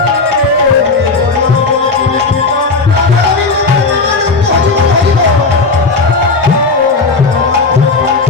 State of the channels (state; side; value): quieter; right; 4.0 dB